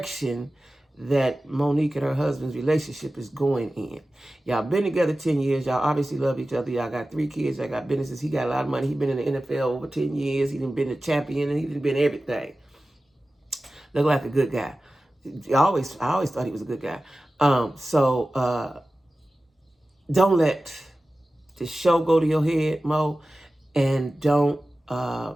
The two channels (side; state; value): both; normal; correlation 0.95